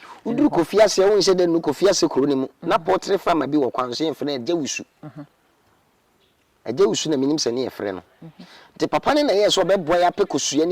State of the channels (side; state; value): both; identical; correlation 1.00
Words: oduru kofiase wo nse de no kofiase kuro ni mu na portrait farm bi wo kwanso ye mfene agawusu agawusu na minim se ne ye frɛ no te papa ne na ye so beboa ya pe kosua